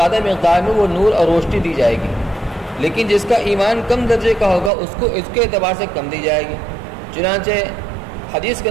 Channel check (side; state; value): left; drops out; at 4.7 s